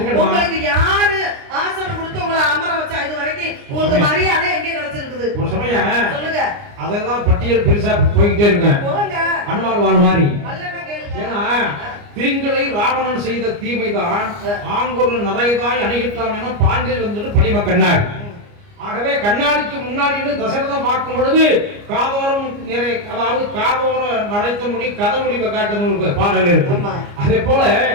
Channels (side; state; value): left; late; 29 ms